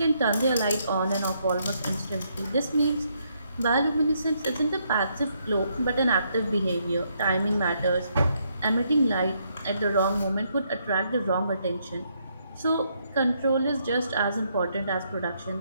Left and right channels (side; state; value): both; inverted; correlation -0.74